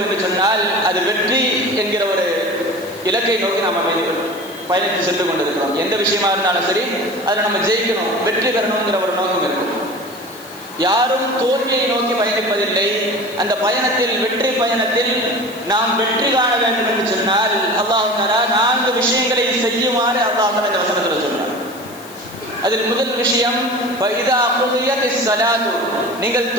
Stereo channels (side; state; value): left; noise; hiss, 20 dB below the sound